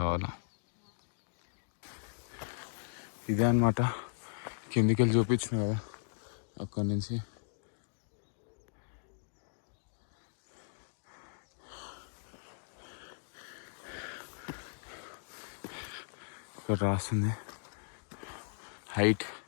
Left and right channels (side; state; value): right; silent; digital silence